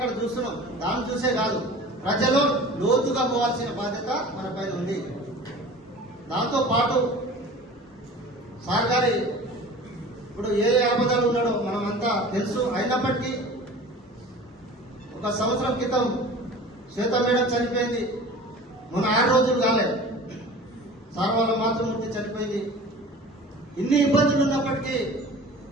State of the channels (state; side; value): normal; both; correlation 0.40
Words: చూస్తున్నాం, దాన్ని చూసే కాదు, ప్రజలు లోతుగా పోవాల్సిన బాధ్యత మన పైన ఉంది. దాంతో పాటు సార్ గారి ఇప్పుడు ఏ ఆపదలు ఉన్నాడో మనమంతా తెలుసు. అయినప్పటికీ ఒక సంవత్సరం క్రితం శ్వేత మేడం చనిపోయింది, మొన్న 6 రోజులు కాలే. సార్ వాళ్ళ మాతృమూర్తి చనిపోయింది. ఇన్ని ఇబ్బందులు ఉన్నప్పటికీ